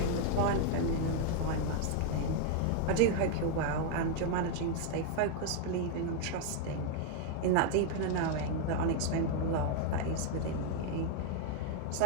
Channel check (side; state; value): both; different; correlation 0.00